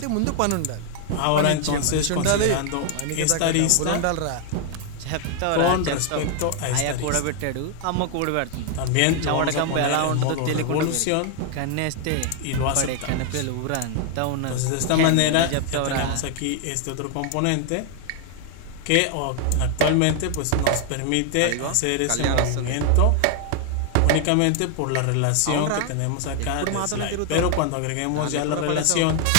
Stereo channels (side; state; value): both; different; correlation 0.00